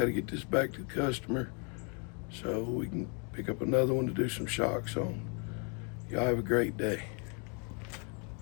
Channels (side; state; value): right; quieter; 37.1 dB